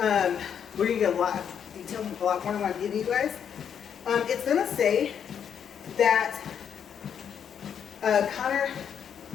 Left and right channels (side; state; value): right; quieter; 8.1 dB